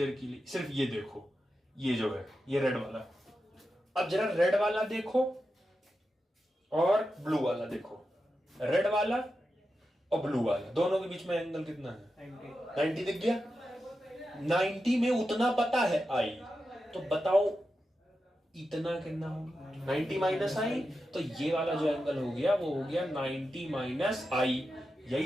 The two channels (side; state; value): both; normal; correlation 0.90